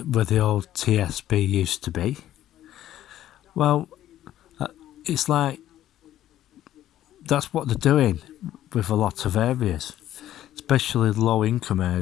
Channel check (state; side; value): quieter; right; 12.7 dB